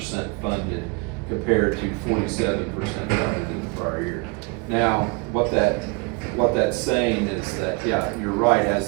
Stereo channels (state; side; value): quieter; left; 30.4 dB